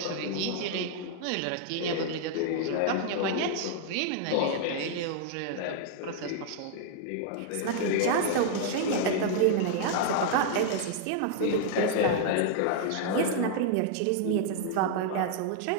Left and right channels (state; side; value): different; both; correlation -0.01